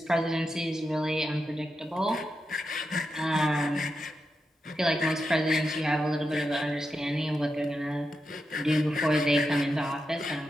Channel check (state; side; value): normal; both; correlation 0.88